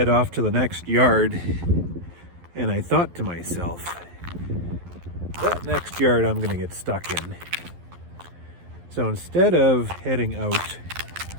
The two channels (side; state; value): left; late; 11 ms